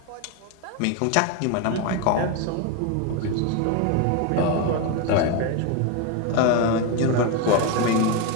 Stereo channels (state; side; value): different; both; correlation 0.02